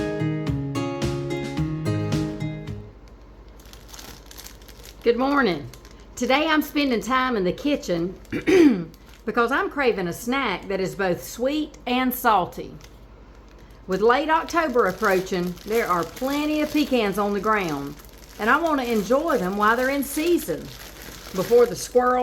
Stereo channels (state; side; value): identical; both; correlation 1.00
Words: Good morning. Today I'm spending time in the kitchen because I'm craving a snack that is both sweet and salty. With late October approaching, there are plenty of pecans on the ground, and I want to enjoy them while they're in season before the